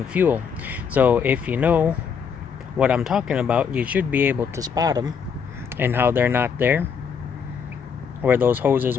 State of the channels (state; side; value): quieter; right; 6.6 dB